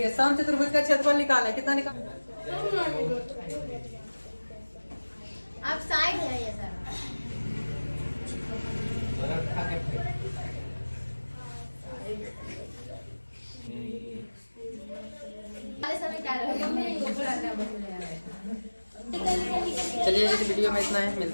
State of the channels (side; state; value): both; inverted; correlation -1.00